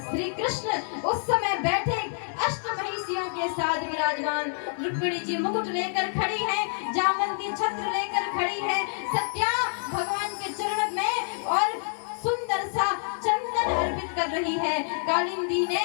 श्री कृष्ण उस समय बैठे अष्टमहिषियों के साथ विराजमान। रुक्मिणी जी मुकुट लेकर खड़ी है, जामवंती छत्र लेकर खड़ी है, सत्या भगवान के चरण में और सुंदर सा चंदन अर्पित कर रही है, कालिंदी ने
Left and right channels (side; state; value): right; silent; digital silence